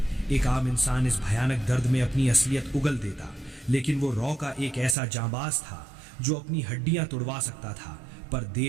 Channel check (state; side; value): drops out; left; at 5.0 s